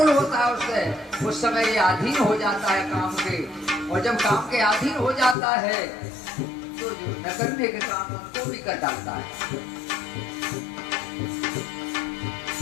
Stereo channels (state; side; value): drops out; right; at 5.4 s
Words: होता है उससे। उस समय ये अधीन हो जाता है काम के, और जब काम के अधीन हो जाता है तो जो न करने के काम उनको भी कर डालता है।